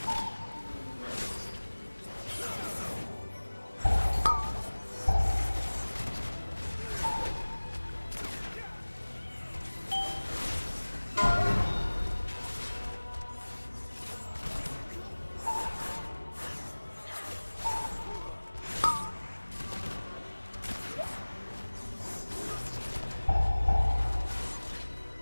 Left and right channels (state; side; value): inverted; both; correlation -1.00